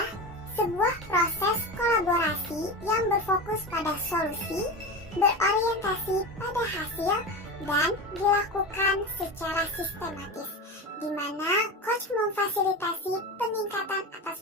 sebuah proses kolaborasi yang berfokus pada solusi, berorientasi pada hasil, dan dilakukan secara sistematis, di mana coach memfasilitasi peningkatan atas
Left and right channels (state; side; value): normal; both; correlation 0.25